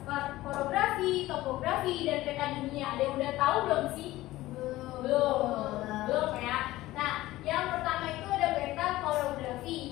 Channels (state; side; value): quieter; right; 17.0 dB